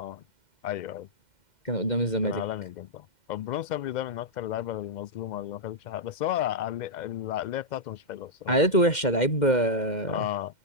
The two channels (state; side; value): late; right; 2.1 ms